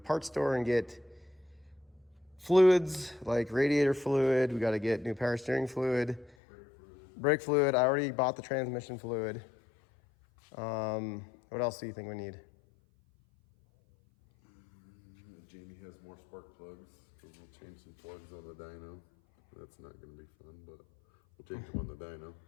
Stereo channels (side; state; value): right; drops out; at 6.4 s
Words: store and get fluids like radiator fluid. We got to get new power steering fluid, brake fluid. I already bought the transmission fluid. What else do you think we need? Jamie has more spark plugs, because we'll change some plugs on the dyno. That's not going to be fun, but we'll change them on the dyno.